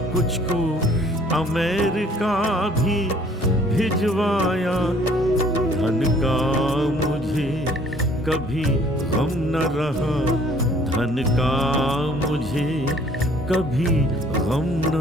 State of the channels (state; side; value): normal; both; correlation 0.57